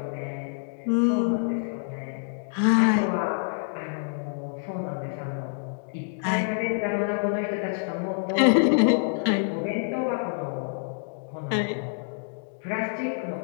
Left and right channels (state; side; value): silent; right; digital silence